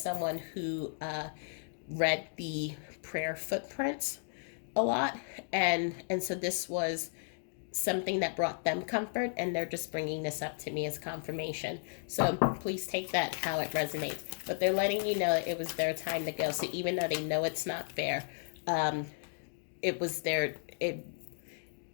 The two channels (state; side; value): silent; right; digital silence